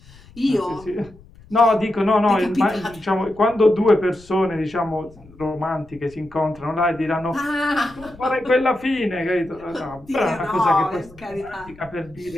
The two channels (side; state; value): left; noise; rumble, 23 dB below the sound